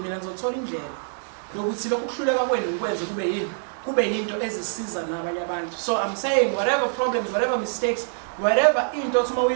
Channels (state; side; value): silent; left; 62 dB below the other